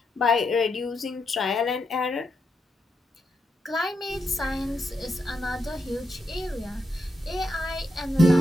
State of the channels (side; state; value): both; normal; correlation 0.83